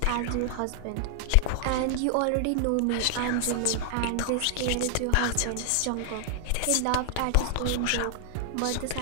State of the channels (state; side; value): different; both; correlation 0.00